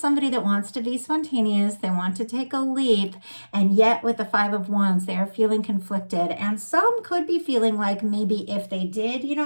that wants to be spontaneous. They want to take a leap, and yet with the Five of Wands, they are feeling conflicted. And some could be feeling like maybe if they did,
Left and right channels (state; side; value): inverted; both; correlation -1.00